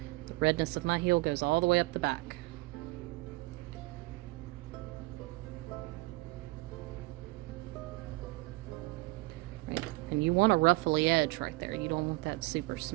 The redness of my heel goes all the way up the back. Right. And you want a ruffly edge right there. You don't want that super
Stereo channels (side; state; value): left; quieter; 22.7 dB